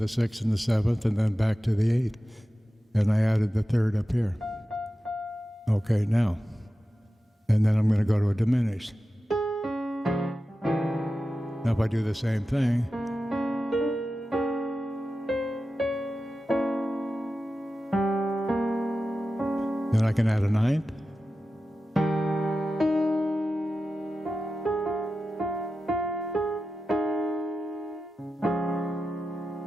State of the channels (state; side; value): normal; both; correlation 0.93